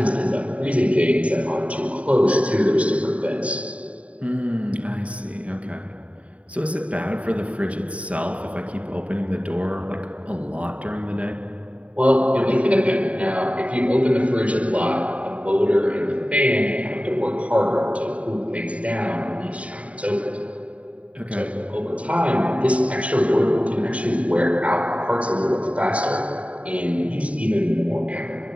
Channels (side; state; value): left; late; 0.065 ms